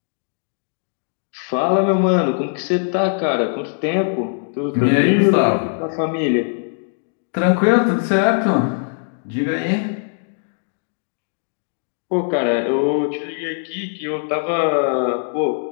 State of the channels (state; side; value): silent; right; 64 dB below the other